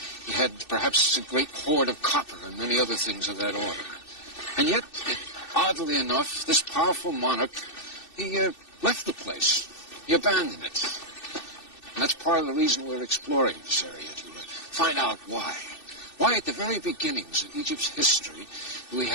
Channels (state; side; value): late; right; 2.6 ms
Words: had perhaps a great hoard of copper and many other things of that order. And yet, oddly enough, this powerful monarch, he left the place. He abandoned it. And that's part of the reason we're exploring this area, to find out why. Why at the very beginnings of Egypt's history do we